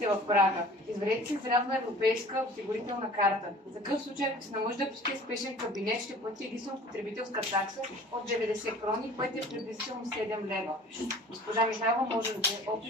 в Прага. Извадете си срядна европейска осигурителна карта. За такъв случай, ако се наложи да посетите спешен кабинет, ще плати единствено потребителска такса от 90 крони, което е приблизително 7 лева. Госпожа Михайлова може да даде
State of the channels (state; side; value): normal; both; correlation 0.46